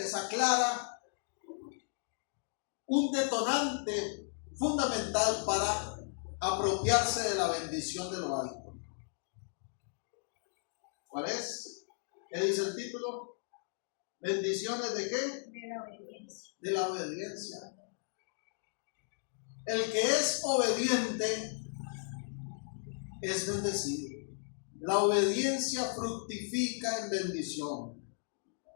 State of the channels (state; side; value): silent; right; digital silence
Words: aclara un detonante fundamental para apropiarse de la bendición de lo alto. ¿Cuál es? ¿Qué dice el título? ¿Bendiciones de qué? De la obediencia. De la obediencia. El que es obediente es bendecido. La obediencia fructifica en bendición.